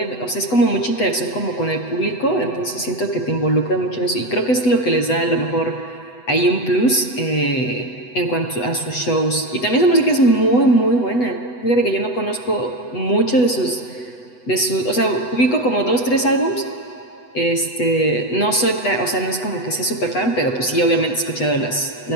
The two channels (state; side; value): late; right; 8.1 ms